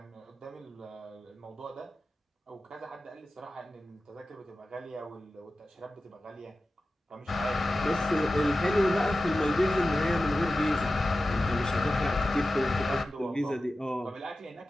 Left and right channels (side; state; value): both; normal; correlation 0.94